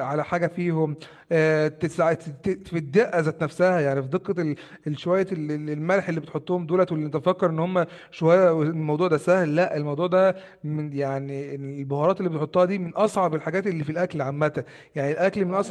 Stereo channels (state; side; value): identical; both; correlation 1.00